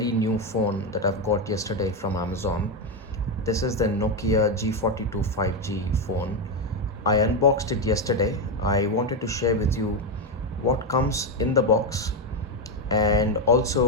new phone that I've got yesterday from Amazon. This is the Nokia G42 5G phone. I unboxed it yesterday. I wanted to share with you what comes in the box and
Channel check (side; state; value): both; normal; correlation 0.07